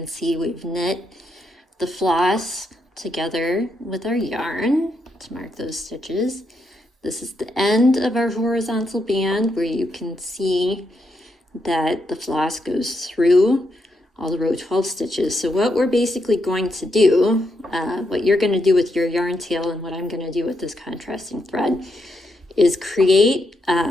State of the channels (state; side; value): normal; both; correlation 0.80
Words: see we've knit the floss together with our yarn to mark those stitches. This is the end of our horizontal band where you can see that the floss goes through all the row 12 stitches. So what we're basically going to do, what you're going to do with your yarn tail and what I'm going to do with this contrasting thread is create